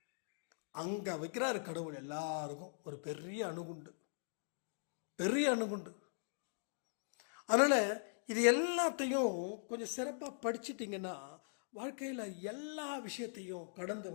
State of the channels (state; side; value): silent; right; digital silence